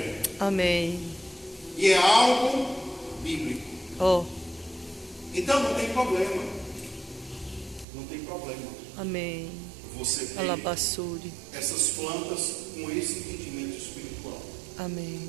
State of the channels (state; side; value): drops out; left; at 7.9 s